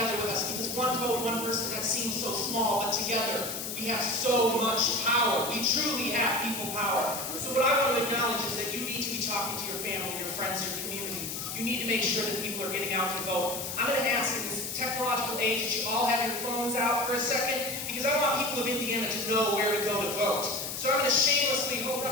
with us, because one vote, one person, that seems so small, but together we have so much power. We truly have people power. So what I want to acknowledge is that you need to be talking to your family, your friends, your community. You need to make sure that people are getting out to vote. I'm going to ask in this technological age that you all have your phones out for a second, because I want people of Indiana to know where to go to vote. So I'm going to shamelessly hold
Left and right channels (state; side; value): noise; left; hiss, 5 dB below the sound